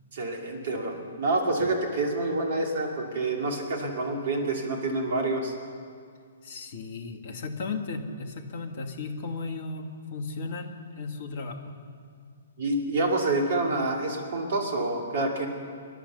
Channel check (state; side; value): inverted; both; correlation -0.45